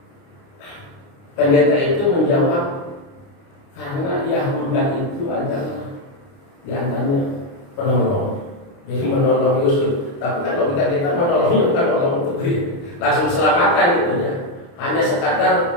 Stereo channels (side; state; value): right; late; 29 ms